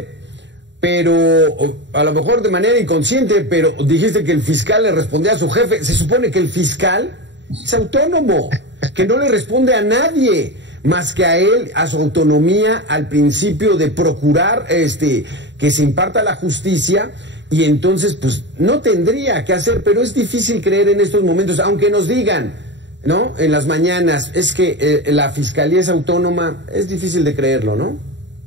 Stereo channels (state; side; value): late; left; 0.52 ms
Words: pero a lo mejor de manera inconsciente, pero dijiste que el fiscal le respondía a su jefe. Se supone que el fiscal es autónomo, que no le responde a nadie más que a él, a su autonomía, al principio de procurar que se imparta la justicia, y entonces pues no tendría que hacer, pero es difícil creer en estos momentos, aunque nos digan, ¿no?, en las mañanas, es que la Fiscalía es autónoma, es difícil de creerlo, ¿no?